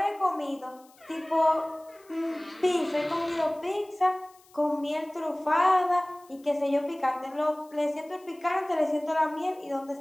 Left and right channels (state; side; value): noise; left; hiss, 29 dB below the sound